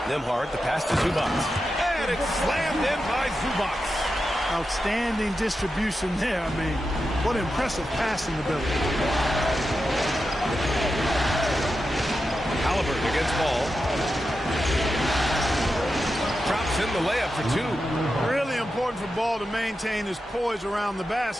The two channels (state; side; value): normal; both; correlation 0.89